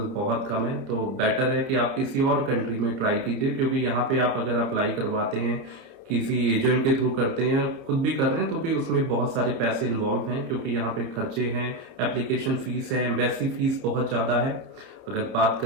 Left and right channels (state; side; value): late; left; 30 ms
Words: बहुत कम है। तो बेटर है कि आप किसी और कंट्री में ट्राई कीजिए, क्योंकि यहाँ पे आप अगर अप्लाई करवाते हैं, किसी एजेंट के थ्रू करते हैं, खुद भी कर रहे हैं, तो भी उसमें बहुत सारे पैसे इन्वॉल्व हैं, क्योंकि यहाँ पे खर्चे हैं, एप्लीकेशन फीस है, एम्बेसी फीस बहुत ज्यादा है। अगर बात